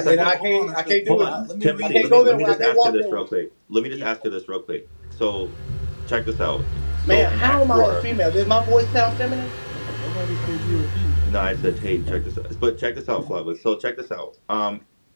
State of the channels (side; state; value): both; inverted; correlation -1.00